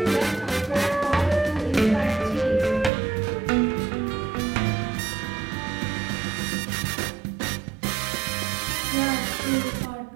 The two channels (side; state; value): left; drops out; at 2.9 s